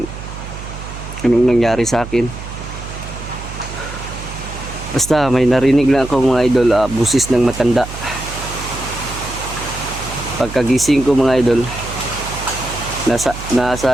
anong nangyari sa akin. Basta may narinig lang ako mga idol, busis ng matanda. Pagkagising ko mga idol,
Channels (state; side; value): noise; right; hum, 11 dB below the sound